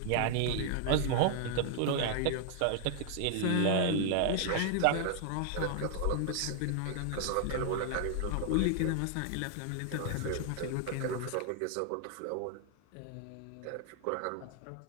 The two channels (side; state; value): both; different; correlation 0.00